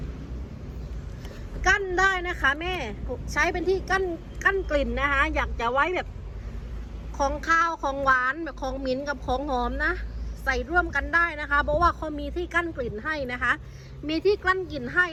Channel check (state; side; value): identical; both; correlation 1.00